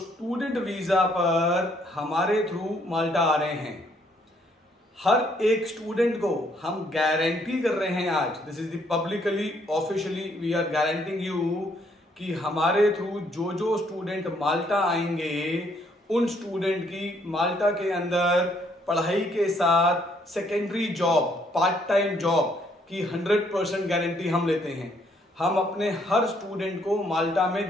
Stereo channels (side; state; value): both; normal; correlation 0.68